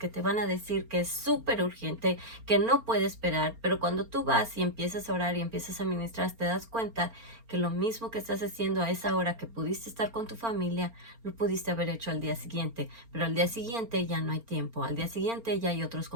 te van a decir que es súper urgente, que no puede esperar, pero cuando tú vas y empiezas a orar y empiezas a ministrar, te das cuenta que lo mismo que estás haciendo a esa hora que pudiste estar con tu familia, lo pudiste haber hecho al día siguiente, pero al día siguiente ya no hay tiempo, al día siguiente ya hay otros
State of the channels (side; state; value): left; late; 4.4 ms